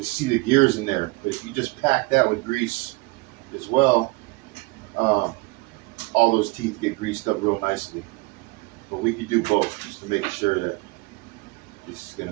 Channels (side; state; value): left; quieter; 24.6 dB